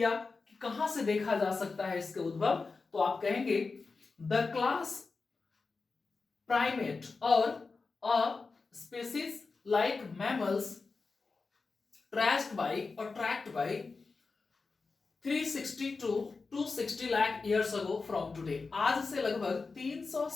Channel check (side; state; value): right; quieter; 4.3 dB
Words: कि कहां से देखा जा सकता है इसके उद्भव। तो आप कहेंगे द क्लास प्राइमेट और a species like mammals tracked by 360 to 260 lakh years ago from today, आज से लगभग